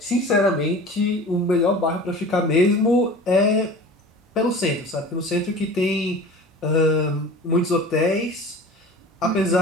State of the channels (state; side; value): normal; both; correlation 0.39